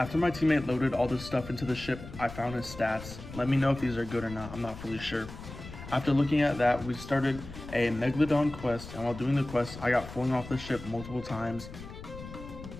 my teammate loaded all this stuff into the ship, I found his stats. Let me know if these are good or not, I'm not fully sure. After looking at that, we started a Megalodon quest, and while doing the quest, I got flung off the ship multiple times.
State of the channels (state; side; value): noise; left; rumble, 13 dB below the sound